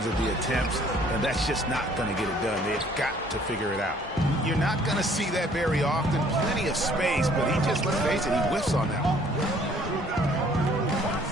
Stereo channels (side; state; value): both; normal; correlation 0.59